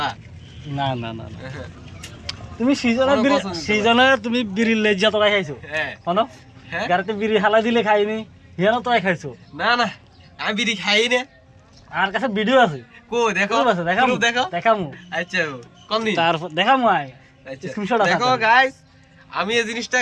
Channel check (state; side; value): identical; both; correlation 1.00